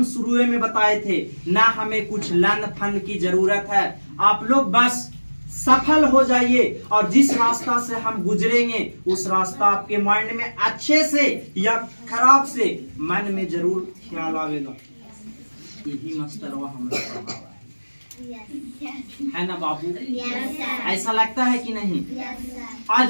शुरू में बताए थे ना, हमें कुछ लन फन की जरूरत है। आप लोग बस सफल हो जाइए और जिस रास्ता से हम गुजरेंगे उस रास्ता आपके माइंड में अच्छे से या खराब से मन में जरूर ख्याल आवेगा। यही मास्टरवा हमारा है ना बाबू? ऐसा लगता है कि नहीं?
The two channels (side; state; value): both; inverted; correlation -1.00